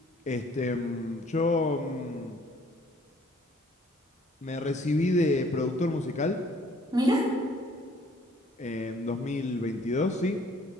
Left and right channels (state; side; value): normal; both; correlation 0.59